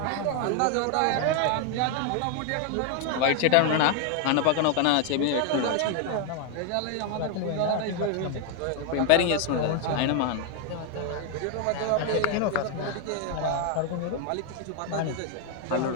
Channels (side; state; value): both; different; correlation 0.01